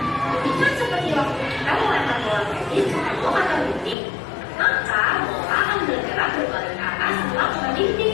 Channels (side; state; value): right; drops out; at 4.0 s